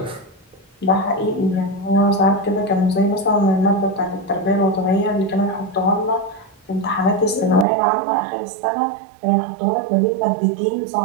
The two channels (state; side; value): drops out; left; at 7.7 s